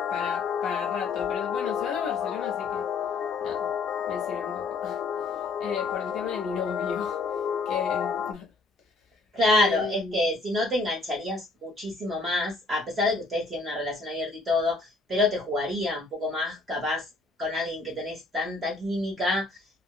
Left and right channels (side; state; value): right; quieter; 3.6 dB